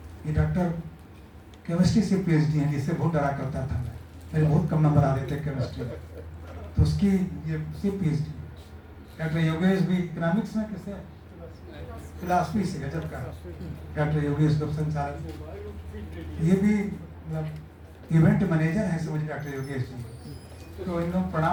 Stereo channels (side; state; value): both; identical; correlation 1.00